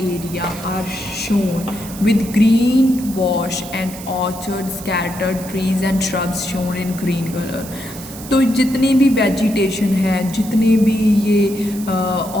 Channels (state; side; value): noise; right; hiss, 15 dB below the sound